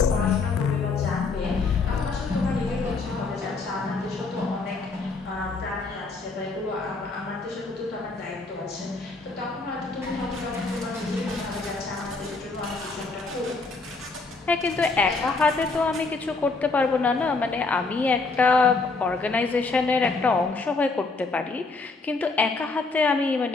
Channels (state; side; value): quieter; right; 3.9 dB